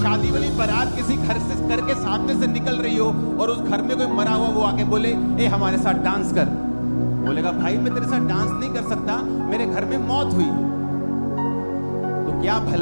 वाली बारात किसी घर के सामने से निकल रही हो और उस घर में कोई मरा हुआ, वो आके बोले ए हमारे साथ डांस कर। बोलेगा भाई मैं तेरे साथ डांस नहीं कर सकता, मेरे घर में मौत हुई। तो क्या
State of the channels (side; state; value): both; inverted; correlation -1.00